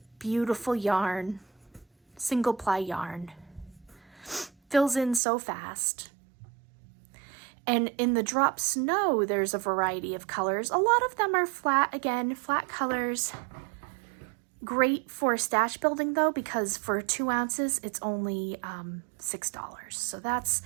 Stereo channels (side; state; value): left; drops out; at 5.2 s